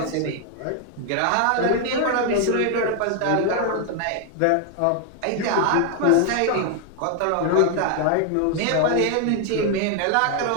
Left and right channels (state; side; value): different; both; correlation 0.00